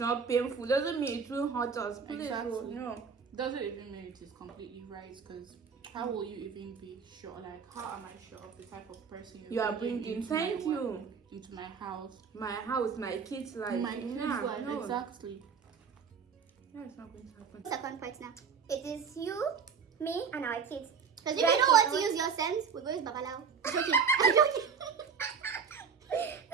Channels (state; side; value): quieter; left; 6.2 dB